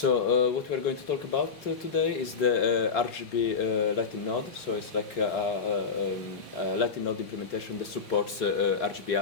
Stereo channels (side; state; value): right; quieter; 5.3 dB